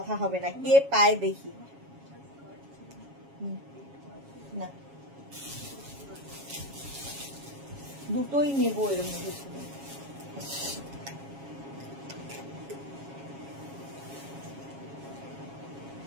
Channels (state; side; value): late; left; 7.3 ms